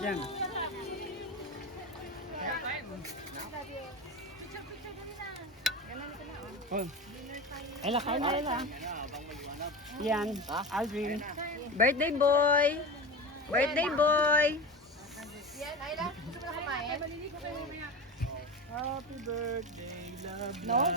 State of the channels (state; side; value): normal; both; correlation 0.26